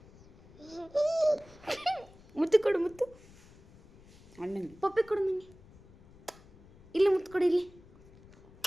ಮುತ್ತು ಕೊಡು, ಮುತ್ತು. ಅಣ್ಣಂಗೆ ಪಪ್ಪಿ ಕೊಡು ನನಗೆ. ಇಲ್ಲಿ ಮುತ್ತು ಕೊಡು, ಇಲ್ಲಿ.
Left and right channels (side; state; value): left; noise; rumble, 23 dB below the sound